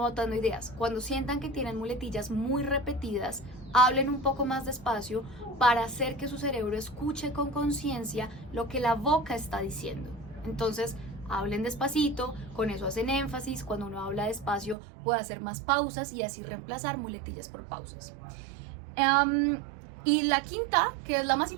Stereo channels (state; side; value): drops out; left; at 14.8 s